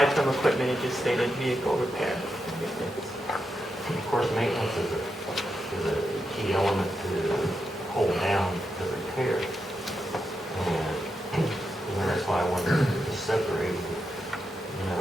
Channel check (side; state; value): both; normal; correlation 0.86